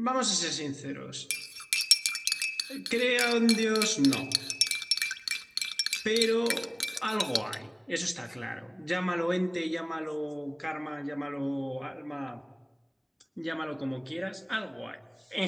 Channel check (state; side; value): identical; both; correlation 1.00